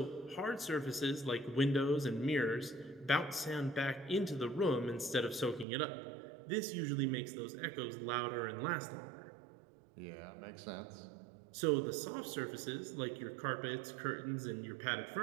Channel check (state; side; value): drops out; left; at 5.7 s